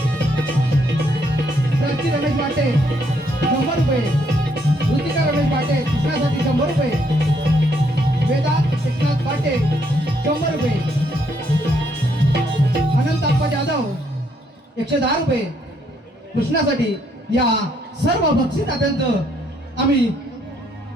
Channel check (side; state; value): both; normal; correlation 0.71